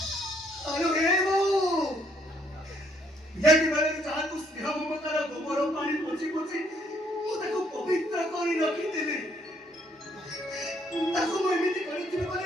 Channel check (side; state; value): both; normal; correlation 0.68